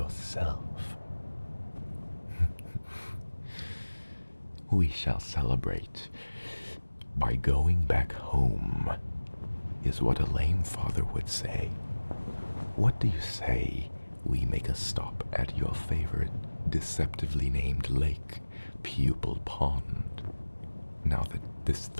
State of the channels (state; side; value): inverted; both; correlation -1.00